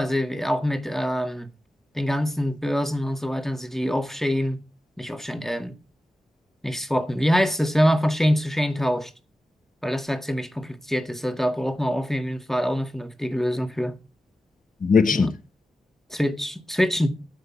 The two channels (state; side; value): normal; both; correlation 0.93